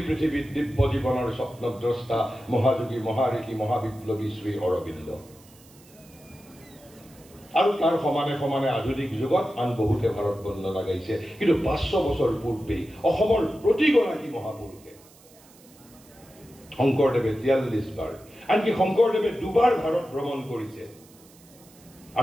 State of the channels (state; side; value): noise; right; hiss, 26 dB below the sound